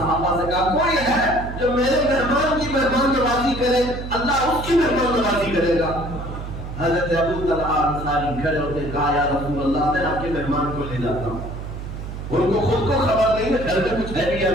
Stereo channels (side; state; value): right; noise; hum, 8 dB below the sound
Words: سے کہا کوئی ہے جو میرے مہمان کی مہمان نوازی کرے، اللہ اس کی مہمان نوازی کرے گا۔ حضرت ابو طلحہ انصاری کھڑے ہوتے کہا یا رسول اللہ میں آپ کے مہمان کو لے جاتا ہوں۔ ان کو خود کو خبر نہیں ہے گھر میں کچھ ہے بھی یا